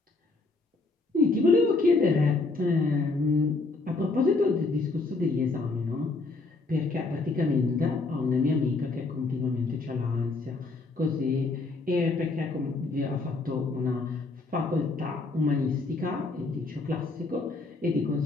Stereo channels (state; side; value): quieter; right; 3.5 dB